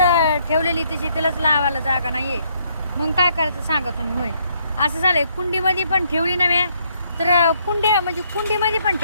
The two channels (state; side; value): inverted; both; correlation -0.71